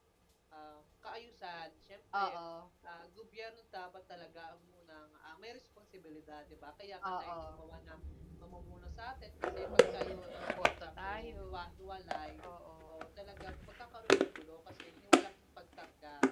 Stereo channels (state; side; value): identical; both; correlation 1.00